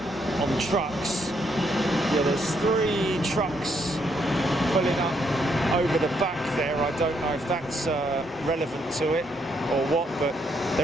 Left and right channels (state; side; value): normal; both; correlation 0.74